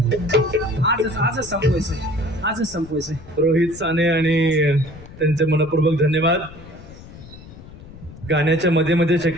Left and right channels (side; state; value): left; noise; rumble, 17 dB below the sound